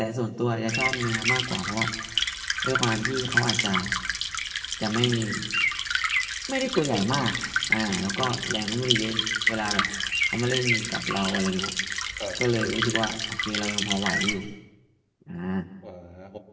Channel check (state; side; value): identical; both; correlation 1.00